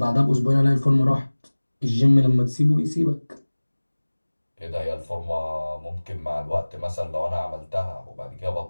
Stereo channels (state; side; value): inverted; both; correlation -1.00